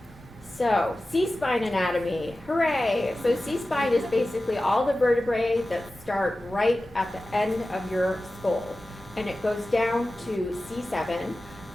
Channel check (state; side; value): normal; both; correlation 0.95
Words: So, C-spine anatomy, hooray! So C-spine is basically all the vertebrae that start right at the end of your skull. And it goes down to C7,